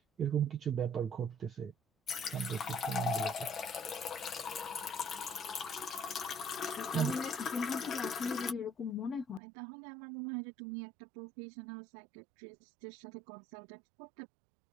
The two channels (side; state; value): left; drops out; at 9.4 s